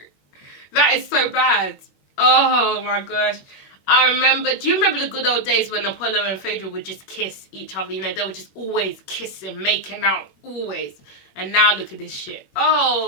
That is so bad. Oh my gosh. Do you remember the good old days when Apollo and Phaedra would just kiss each other? You know, they would just always kissing, making out, always. And now look at this shit.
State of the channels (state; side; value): late; right; 21 ms